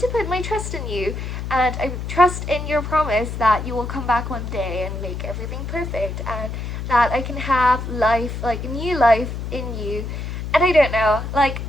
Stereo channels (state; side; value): noise; left; hum, 5 dB below the sound